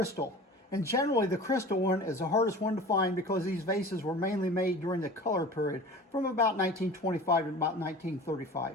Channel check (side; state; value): both; normal; correlation 0.39